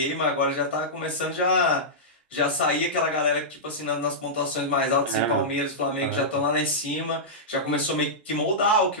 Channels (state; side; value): normal; both; correlation -0.12